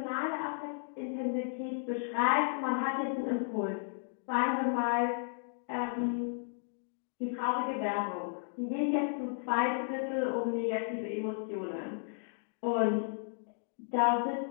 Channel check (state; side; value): silent; right; digital silence